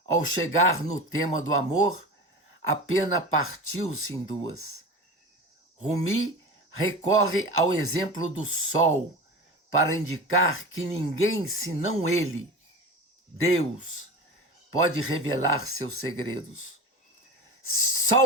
ao chegar no tema do amor, a pena partiu-se em duas. Rumi recorre ao exemplo do sol para indicar que ninguém senão ele, Deus, pode revelar seus segredos.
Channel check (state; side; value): normal; both; correlation 0.30